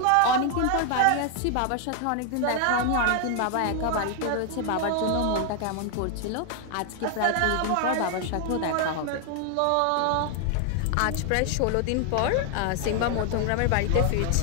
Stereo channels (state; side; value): different; both; correlation 0.00